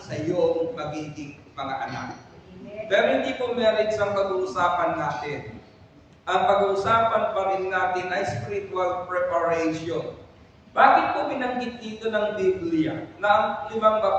iyong magiging mga anak. Pero hindi po marriage ang pag-uusapan natin. Ang pag-uusapan pa rin natin ay spiritual preparation. Bakit po binanggit dito ng Biblia na ang 5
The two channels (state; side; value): identical; both; correlation 1.00